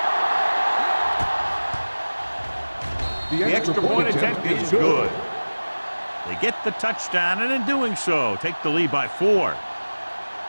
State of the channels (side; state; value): both; inverted; correlation -1.00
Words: The extra point attempt is good. They get the touchdown, and in doing so, take the lead by 4.